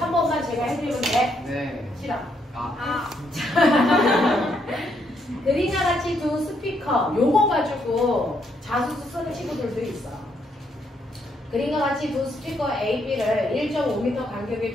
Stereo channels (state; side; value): normal; both; correlation 0.74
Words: 제가 해드리면 돼? 네. 싫어. 그림과 같이 두 스피커 요거 가지고 자소서 쓰는 친구들도 있어. 그림과 같이 두 스피커 A, B를 1.5m 간격에